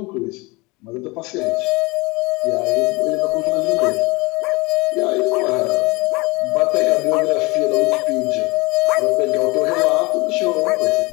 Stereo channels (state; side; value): quieter; right; 24.7 dB